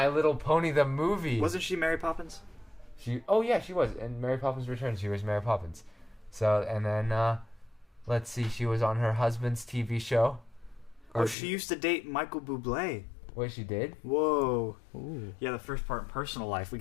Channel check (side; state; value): right; drops out; at 11.4 s